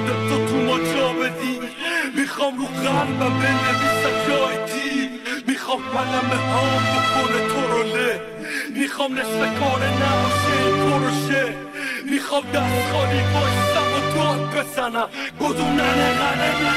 تو ما جا بدی. میخوام رو قلبم بنویسم جای دیر، میخوام قلم هام بکنه تو رو له، میخوام نصف کار نباشه این پروشه، میخوام دست خالی بایستم و داد بزنم گدونن غنه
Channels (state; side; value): identical; both; correlation 1.00